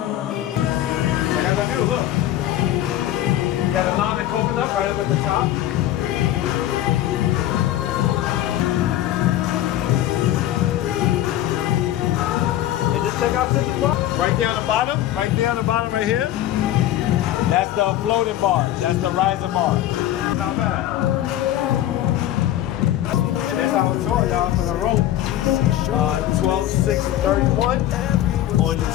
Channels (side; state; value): right; quieter; 13.1 dB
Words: Look. You got the lime and coconut right up at the top. And just check out Central Park. Right there on the bottom right here. That's the floating bar. That's the rising bar. Not bad. And that's our tour, y'all, for the room. 12/6/31 on